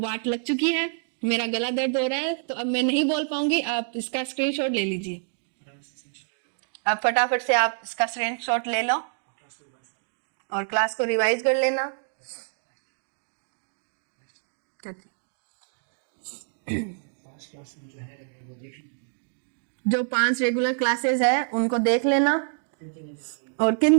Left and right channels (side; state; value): left; silent; 60 dB below the other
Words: लग चुकी है, मेरा गला दर्द हो रहा है, तो अब मैं नहीं बोल पाऊंगी। आप इसका स्क्रीनशॉट ले लीजिए। अब फटाफट से आप इसका स्क्रीनशॉट ले लो और क्लास को रिवाइज कर लेना। जो 5 रेगुलर क्लासेस है उनको देख लेना, और